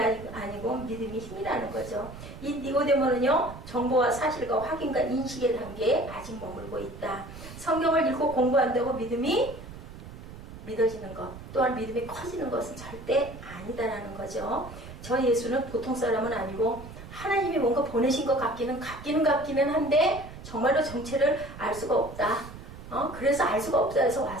아니고 믿음이 힘이라는 거죠. 이 니고데모는요. 정보와 사실과 확인과 인식의 단계에 아직 머물고 있다. 성경을 읽고 공부한다고 믿음이 믿어지는 것 또한 믿음이 커지는 것은 절대 아니다라는 거죠. 저 예수는 보통 사람은 아니고 하나님이 뭔가 보내신 것 같기는 한데 정말로 정체를 알 수가 없다. 그래서 알 수가 없다 해서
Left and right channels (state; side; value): noise; right; rumble, 14 dB below the sound